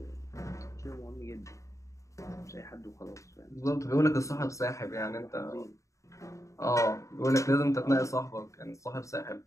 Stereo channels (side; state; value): right; late; 0.15 ms